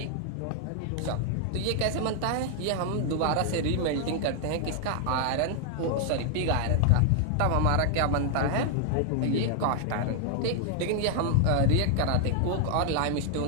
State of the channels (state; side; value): different; both; correlation 0.00